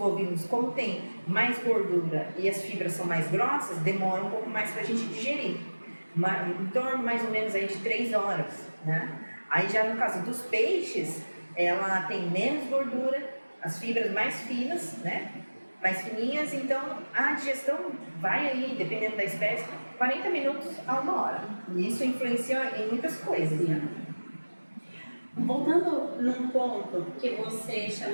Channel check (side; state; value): both; inverted; correlation -1.00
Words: como tem mais gordura e as fibras são mais grossas, demora um pouco mais para a gente digerir. Em torno mais ou menos aí de 3 horas, né? Aí já no caso dos peixes, ela tem menos gordura, as fibras mais finas, né? Mais fininhas, então a digestão vai aí, dependendo da espécie, 40 minutos a 1 hora. E isso influencia em muitas coisas, né? Voltando num ponto que você